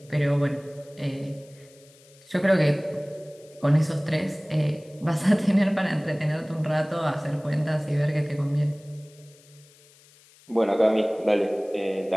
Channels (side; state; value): left; noise; hiss, 27 dB below the sound